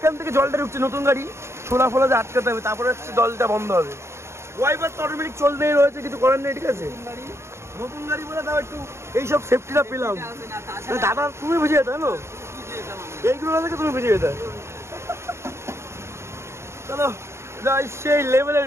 থেকে জলটা ঢুকছে, নতুন গাড়ি ছোলা ফোলা যে আটকাতে হবে, তারপরে হচ্ছে জলটা বন্ধ হবে। ওয়াইপার তো অটোমেটিক চলতেই রয়েছে, কিছু করার নেই, ঠিক আছে। নতুন গাড়ি বলে তাও একটু এইসব সেফটিটা পেলাম। দাদা তুমি বুঝে যেতে না, এইগুলো থেকে তুমি বুঝে যেতে। চলো যাই, সেই লেভেলের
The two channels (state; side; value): late; left; 0.13 ms